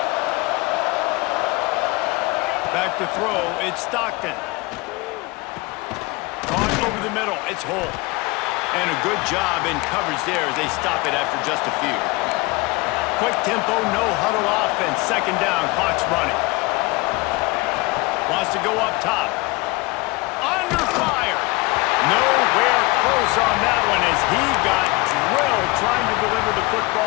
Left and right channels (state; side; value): quieter; right; 24.3 dB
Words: Back to throw. It's Stockton. Caught over the middle. It's Holt. And a good job in coverage there as they stop it after just a few. Quick tempo, no huddle offense. 2nd down, clock's running. Wants to go up top. Under fire. Nowhere close on that one as he got drilled trying to deliver the